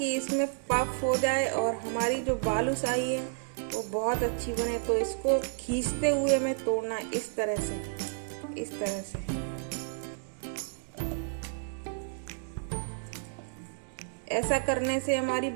इसमें पफ हो जाए और हमारी जो बालूशाही है वो बहुत अच्छी बने। तो इसको खींचते हुए हमें तोड़ना है इस तरह से, इस तरह से। ऐसा करने से हमारी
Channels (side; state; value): left; silent; digital silence